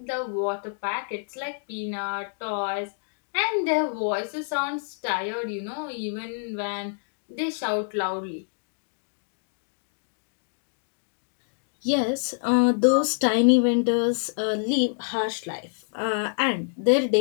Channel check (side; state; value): right; silent; digital silence